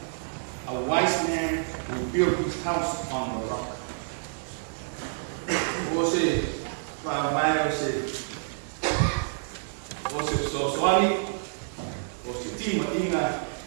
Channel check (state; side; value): silent; left; digital silence